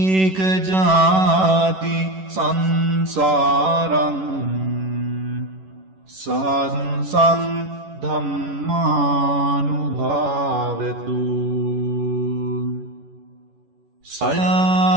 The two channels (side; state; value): left; late; 11 ms